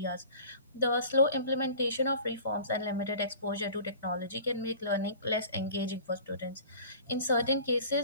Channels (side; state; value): both; inverted; correlation -0.43